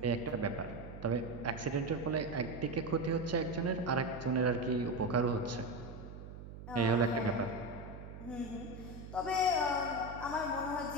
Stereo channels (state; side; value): noise; right; hum, 12 dB below the sound